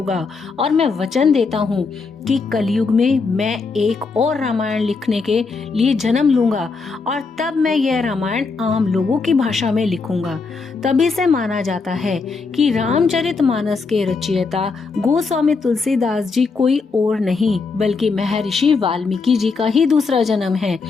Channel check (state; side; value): quieter; right; 4.5 dB